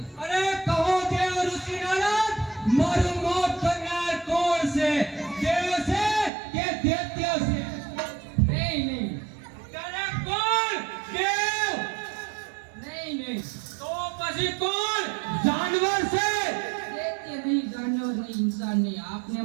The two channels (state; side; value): drops out; left; at 6.3 s